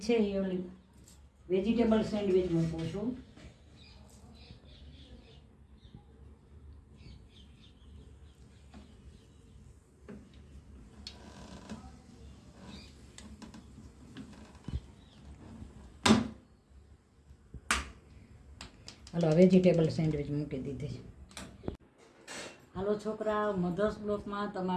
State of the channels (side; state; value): both; identical; correlation 1.00